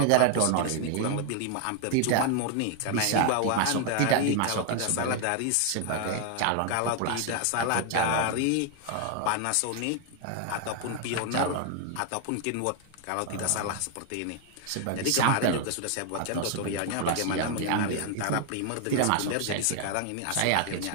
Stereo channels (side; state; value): both; different; correlation 0.00